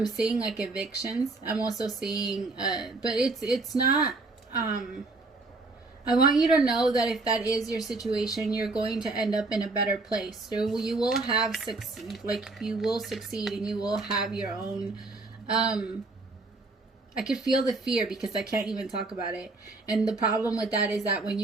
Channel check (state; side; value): quieter; left; 3.4 dB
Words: seeing like evictions. I'm also seeing, but it's not, I want you to know that if that is your situation, you're going to end up in a better place. So you will you will succeed, and you will have your own, I could feel the fear because I can't even talk about it. And the problem with that is that when